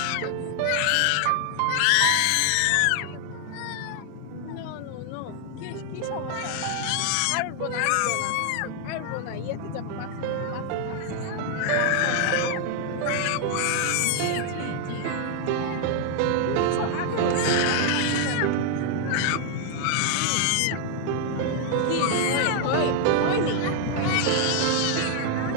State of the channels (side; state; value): both; different; correlation 0.00